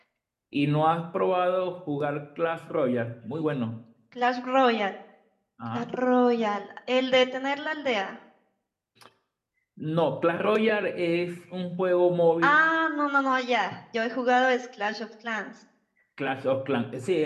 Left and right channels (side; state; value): both; identical; correlation 1.00